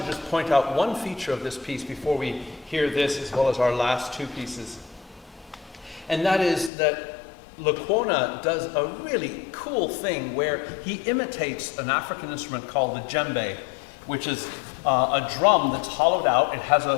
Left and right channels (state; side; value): drops out; right; at 6.7 s